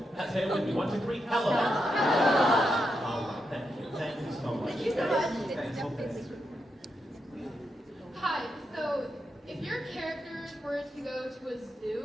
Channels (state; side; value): normal; both; correlation 0.84